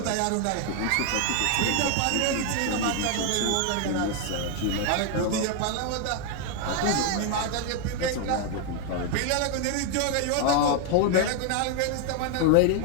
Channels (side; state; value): both; different; correlation 0.01